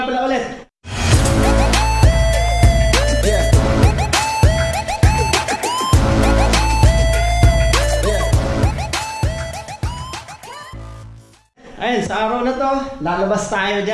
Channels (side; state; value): both; identical; correlation 1.00